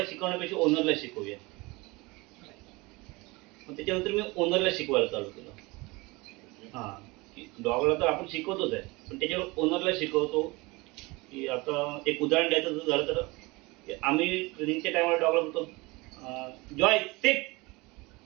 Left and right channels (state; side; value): quieter; left; 24.1 dB